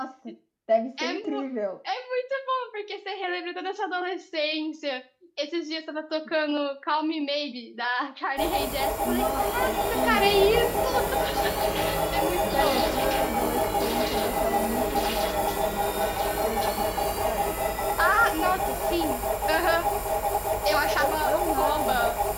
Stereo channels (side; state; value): both; identical; correlation 1.00